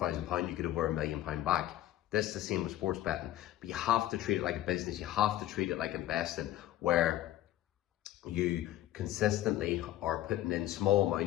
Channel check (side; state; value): right; quieter; 13.7 dB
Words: pounds, you get over £1 million back. This is the same with sports betting, but you have to treat it like a business. You have to treat it like investing, where you consistently are putting in small